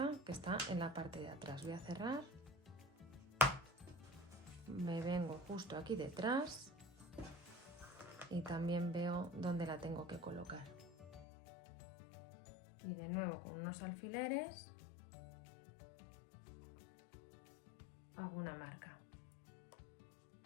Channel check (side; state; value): right; drops out; at 11.2 s